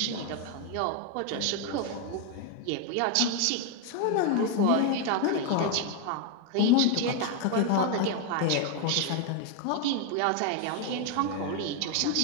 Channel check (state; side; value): different; both; correlation 0.01